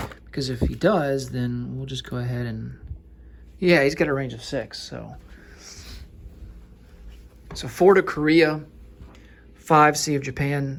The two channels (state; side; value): identical; both; correlation 1.00